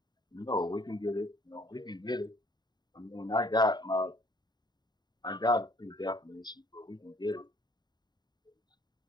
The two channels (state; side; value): late; right; 0.20 ms